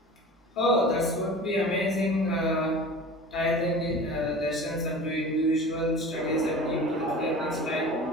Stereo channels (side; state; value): both; normal; correlation 0.38